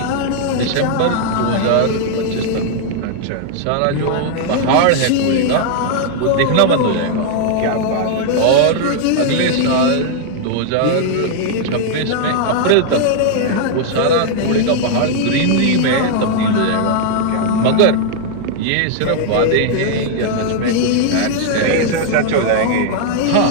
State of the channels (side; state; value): both; different; correlation -0.01